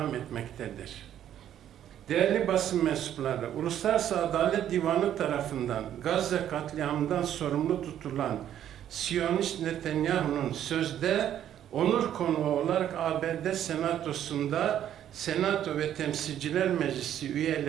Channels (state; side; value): quieter; left; 10.7 dB